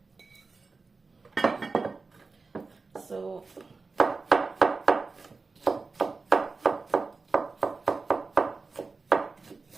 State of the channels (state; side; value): quieter; left; 4.1 dB